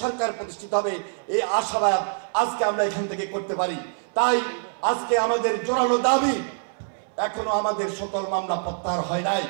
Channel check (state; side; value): silent; left; 62 dB below the other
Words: সরকার প্রতিষ্ঠিত হবে। এই আশাবাদ আজকে আমরা এখান থেকে করতে পারি। তাই আজকে আমাদের জোরালো দাবি, এখনো আমাদের সকল মামলা প্রত্যাহার হয় নাই।